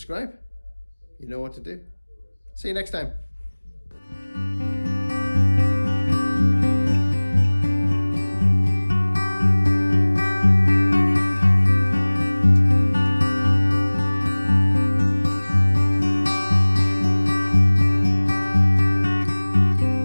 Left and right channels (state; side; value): inverted; both; correlation -1.00